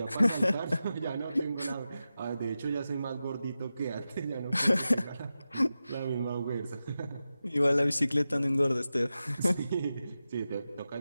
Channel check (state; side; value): inverted; both; correlation -0.92